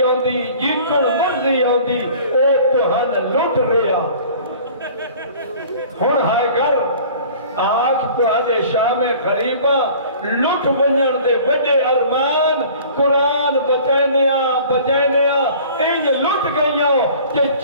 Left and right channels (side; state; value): both; inverted; correlation -0.47